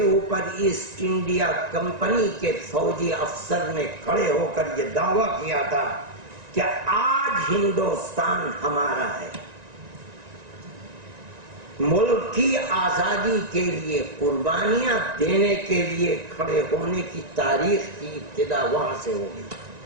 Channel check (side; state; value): left; late; 1.9 ms